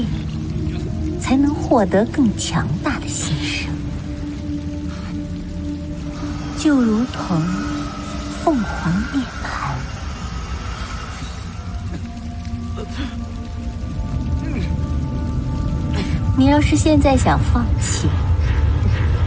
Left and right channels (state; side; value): identical; both; correlation 1.00